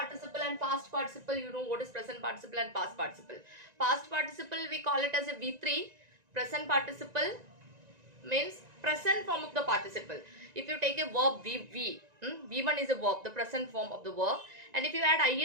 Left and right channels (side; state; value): left; late; 1.9 ms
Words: and past participle, you know what is present participle and past participle. Past participle we call it as a V3. Present participle means present form of the participle. If you take a verb V1 is a verb, the present form of the verb, and if you add